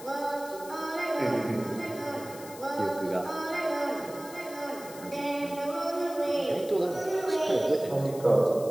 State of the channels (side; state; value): left; noise; hiss, 16 dB below the sound